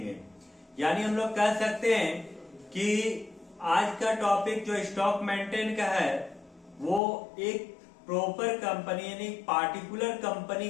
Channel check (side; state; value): right; drops out; at 7.0 s